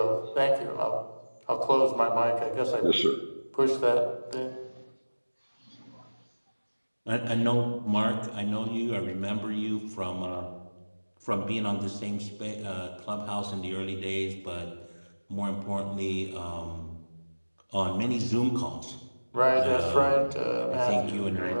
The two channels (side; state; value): both; inverted; correlation -1.00